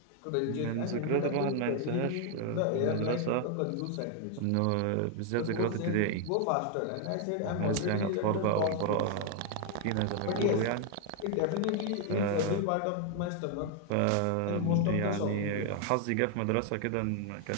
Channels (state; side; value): different; both; correlation 0.00